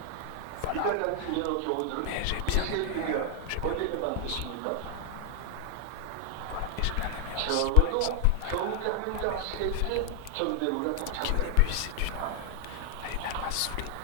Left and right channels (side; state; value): both; different; correlation 0.00